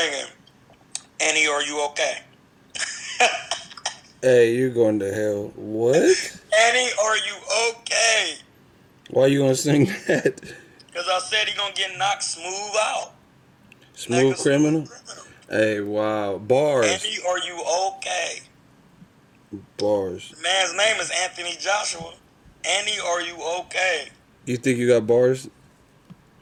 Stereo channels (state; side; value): identical; both; correlation 1.00